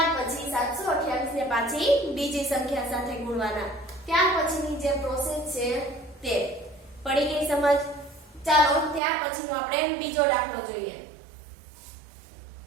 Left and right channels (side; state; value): left; drops out; at 9.0 s